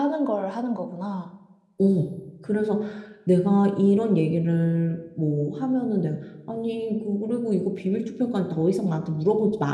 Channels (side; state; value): both; identical; correlation 1.00